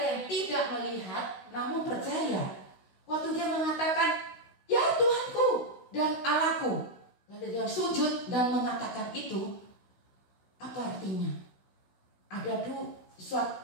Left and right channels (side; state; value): right; late; 16 ms